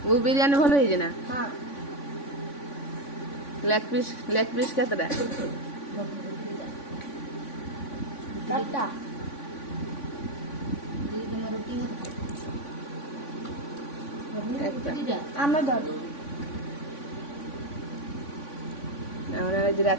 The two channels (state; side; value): late; right; 3.5 ms